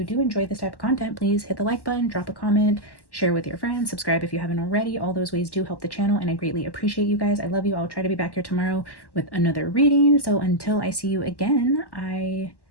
do enjoy this type of content, please hit the like button, drop a comment, share with your friends, subscribe if you haven't already. All those ways do help the channel, and I greatly appreciate you guys. I love you. I'll try to be back here tomorrow with another reading. So until I see you again, I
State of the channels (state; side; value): late; right; 1.1 ms